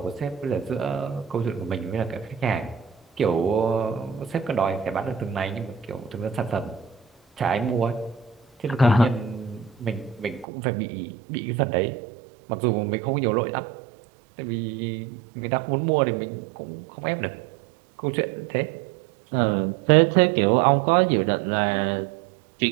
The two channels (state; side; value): drops out; left; at 10.5 s